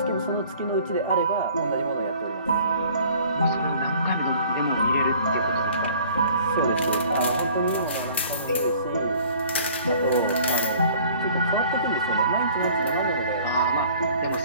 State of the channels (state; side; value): inverted; both; correlation -0.52